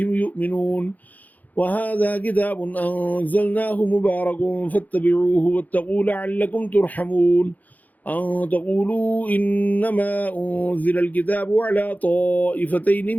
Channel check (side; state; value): right; late; 0.080 ms